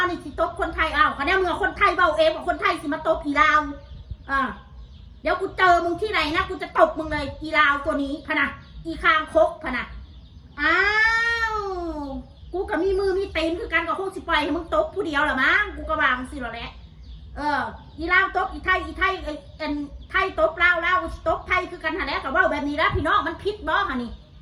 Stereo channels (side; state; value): both; identical; correlation 1.00